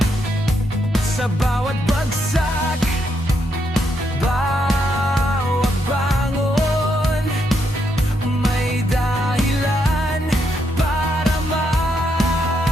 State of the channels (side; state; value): both; normal; correlation 0.78